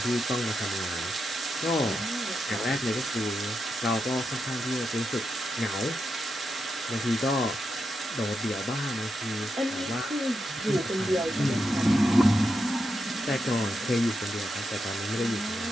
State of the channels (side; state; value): both; normal; correlation 0.85